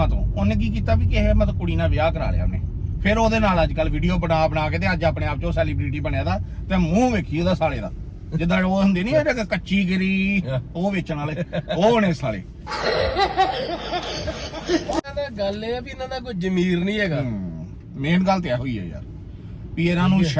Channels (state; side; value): identical; both; correlation 1.00